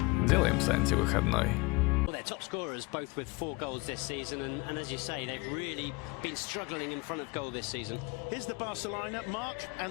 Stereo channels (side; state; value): right; quieter; 25.7 dB